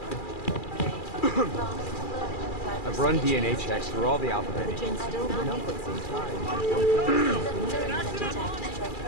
I've run DNA checks through all the alphabet.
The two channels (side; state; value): right; late; 2.4 ms